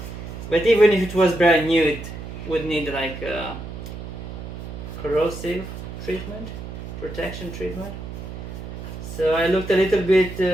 But even if it was brand new, it would need like a corrosive treatment, protection treatment. So I looked a little bit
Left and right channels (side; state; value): right; noise; hum, 9 dB below the sound